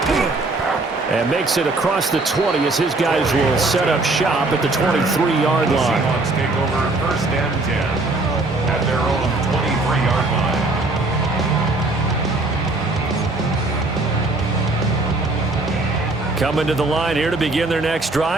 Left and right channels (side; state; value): left; quieter; 3.1 dB